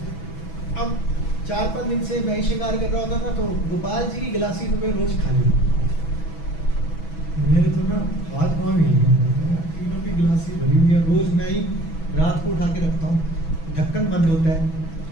अब 4-5 दिन से मैं ही श्रृंगार कर रहा होता था, तो गोपाल जी की गिलासी तो मैं रोज खा ली। मेरे तो ना हाथ पाँव हिल गए, तीनों की गिलासी भरी हुई है। रोज मैं ही रात को उठा के रखता हूँ, ढक्कन बंद होता है,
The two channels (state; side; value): late; right; 6.1 ms